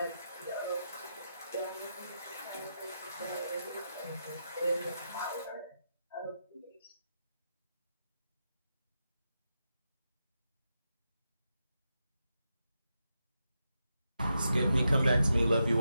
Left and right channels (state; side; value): inverted; both; correlation -0.86